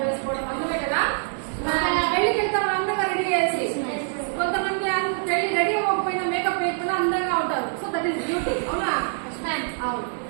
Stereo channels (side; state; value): left; silent; digital silence